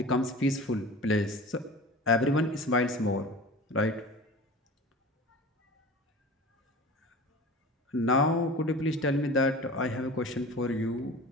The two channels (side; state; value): both; normal; correlation 0.37